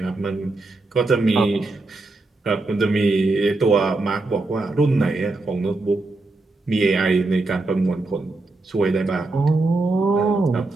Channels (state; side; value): quieter; left; 3.2 dB